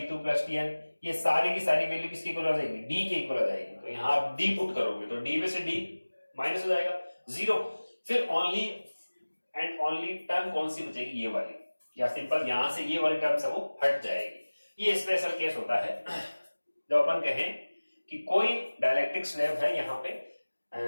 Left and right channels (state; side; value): inverted; both; correlation -1.00